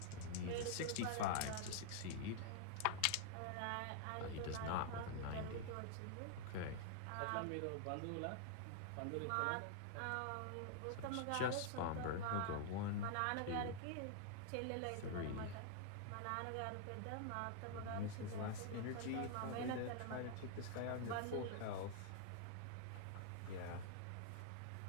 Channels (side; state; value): both; different; correlation 0.00